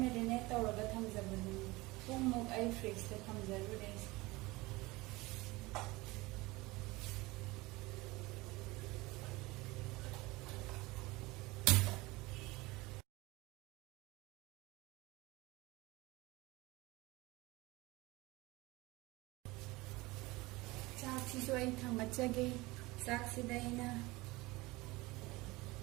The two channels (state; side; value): quieter; left; 21.6 dB